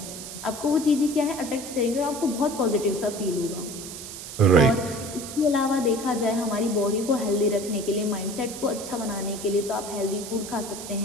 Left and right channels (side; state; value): right; noise; hiss, 10 dB below the sound